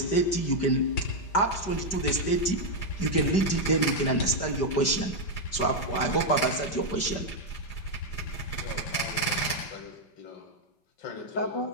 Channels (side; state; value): right; late; 5.1 ms